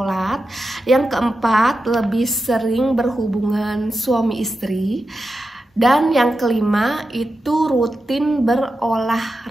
Yang keempat, lebih sering berhubungan suami istri. Dan yang kelima itu rutin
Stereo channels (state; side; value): normal; both; correlation 0.90